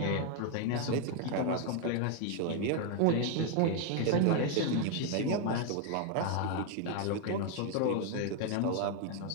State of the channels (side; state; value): both; different; correlation 0.01